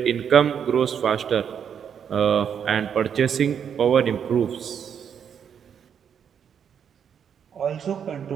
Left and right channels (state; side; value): quieter; left; 7.9 dB